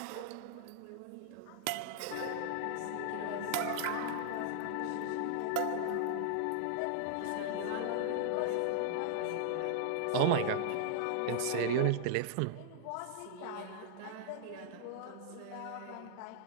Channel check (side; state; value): both; different; correlation -0.01